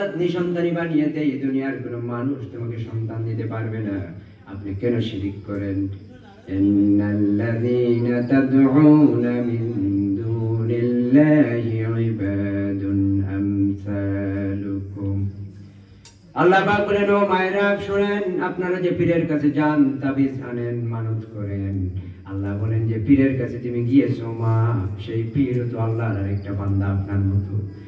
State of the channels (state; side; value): identical; both; correlation 1.00